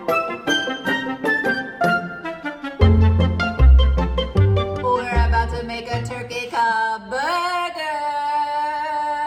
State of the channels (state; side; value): identical; both; correlation 1.00